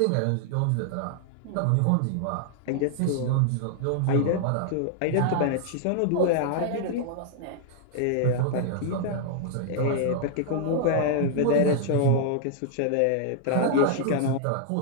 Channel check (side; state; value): both; different; correlation -0.01